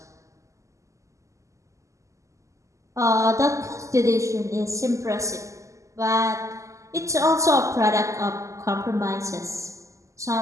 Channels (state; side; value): late; left; 0.15 ms